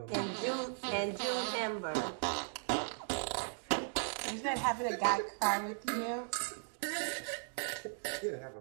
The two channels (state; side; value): silent; left; digital silence